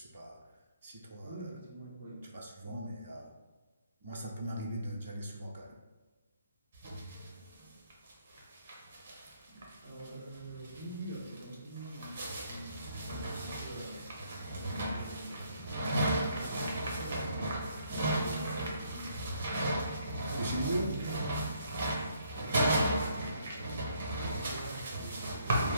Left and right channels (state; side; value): inverted; both; correlation -0.67